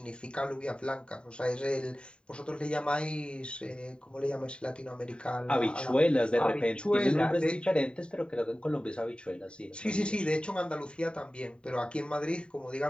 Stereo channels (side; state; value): right; late; 0.052 ms